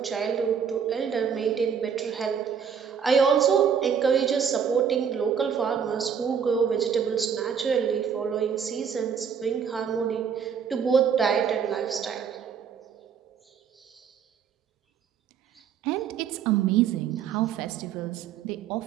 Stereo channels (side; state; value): left; quieter; 7.3 dB